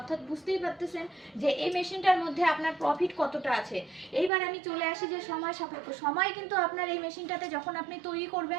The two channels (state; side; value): drops out; left; at 4.3 s